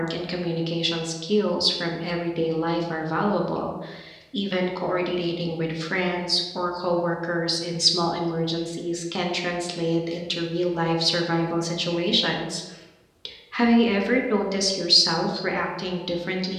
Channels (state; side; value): identical; both; correlation 1.00